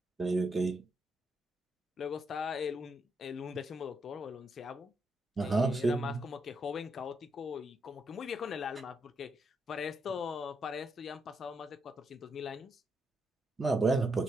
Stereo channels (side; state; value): both; normal; correlation 0.79